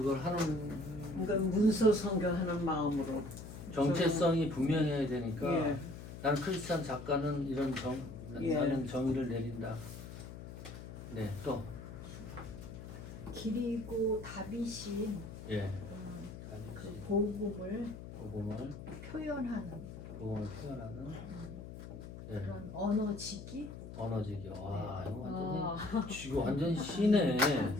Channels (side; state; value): left; noise; hum, 11 dB below the sound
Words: 하는 그러니까 문서 성경하는 마음으로 정체성이 분명해야 되니까 예. 나는 크리스찬 작가는 이런 예. 나는 정의를 내린다. 네, 또 그리고 다윗이 예. 그 복음을 복음을 표현하는 표현하는 예. 그런 언어지기. 언어지기. 와, 이거 완전 시네.